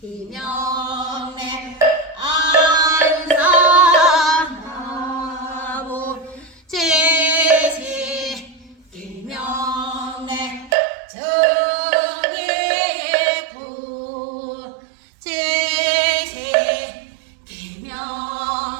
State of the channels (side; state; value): left; drops out; at 10.8 s